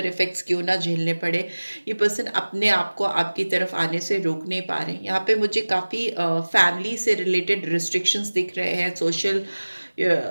इफेक्ट्स क्यों ना झेलने पड़े, ये पर्सन अपने आप को आपकी तरफ आने से रोक नहीं पा रहे हैं। यहाँ पे मुझे काफ़ी फैमिली से रिलेटेड रिस्ट्रिक्शंस दिख रहे हैं। सोशल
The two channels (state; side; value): inverted; both; correlation -1.00